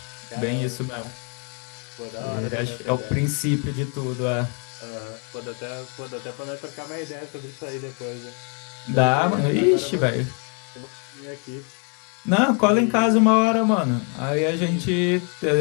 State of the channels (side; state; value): right; quieter; 37.7 dB